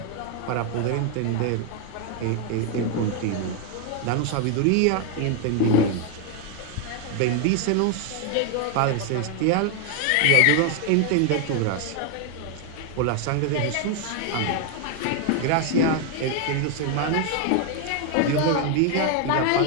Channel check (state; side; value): different; both; correlation 0.01